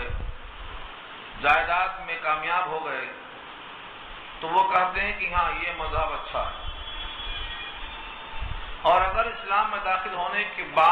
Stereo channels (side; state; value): both; identical; correlation 1.00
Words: جائیداد میں کامیاب ہو گئے، تو وہ کہتے ہیں کہ ہاں یہ مذہب اچھا ہے۔ اور اگر اسلام میں داخل ہونے کے